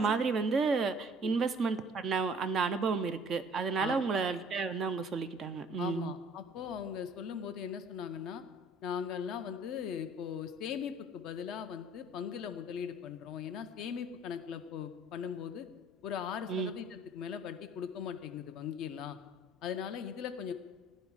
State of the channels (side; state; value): both; normal; correlation 0.54